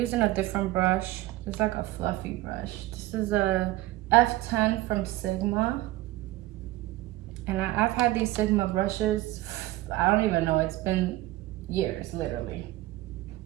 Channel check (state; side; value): quieter; left; 17.1 dB